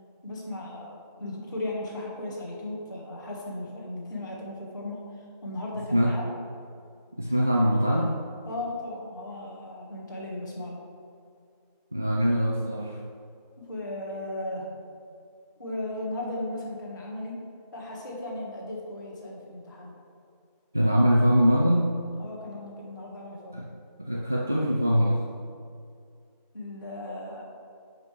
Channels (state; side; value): inverted; both; correlation -0.89